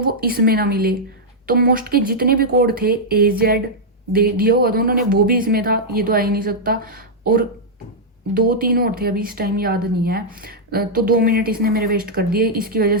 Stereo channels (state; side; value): normal; both; correlation -0.06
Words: इसमें ना मिले। तो मोस्ट के जितने भी कोड थे AZ दे दिया हुआ था उन्होंने, वो भी इसमें था, ये तो आ ही नहीं सकता। और 2-3 और थे, अभी इस टाइम याद नहीं है। तो 2 मिनट इसने मेरे वेस्ट कर दिए। इसकी वजह